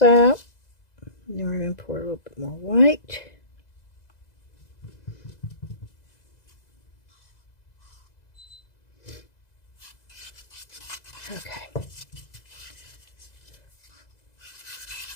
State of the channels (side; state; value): right; late; 2.0 ms